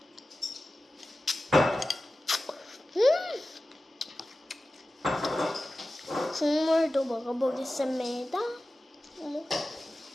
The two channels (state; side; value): normal; both; correlation 0.95